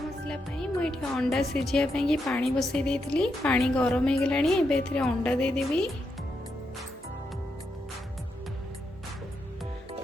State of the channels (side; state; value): both; normal; correlation 0.83